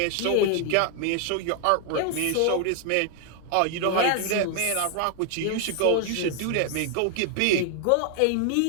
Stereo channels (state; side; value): different; both; correlation 0.00